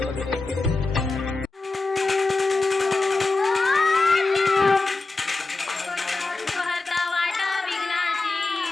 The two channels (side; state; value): right; quieter; 3.5 dB